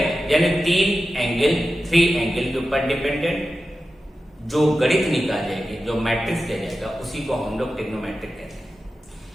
यानी तीन एंगल, थ्री एंगल के ऊपर डिपेंडेंट जो गणित निकाल जाएगी, जो मैट्रिक्स दिया जाएगा उसी को हम लोग ट्रिग्नोमेट्रिक कहते हैं।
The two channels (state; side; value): normal; both; correlation 0.93